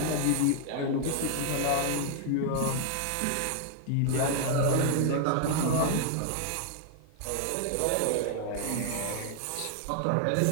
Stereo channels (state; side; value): different; both; correlation 0.00